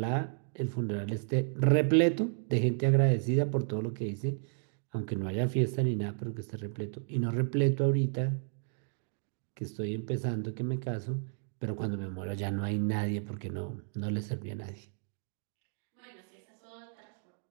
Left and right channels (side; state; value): left; silent; digital silence